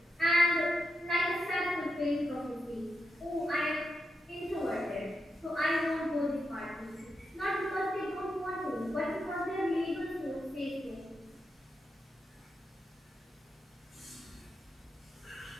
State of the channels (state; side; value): normal; both; correlation 0.85